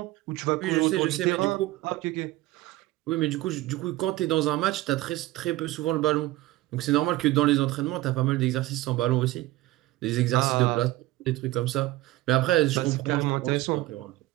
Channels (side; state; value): left; quieter; 17.6 dB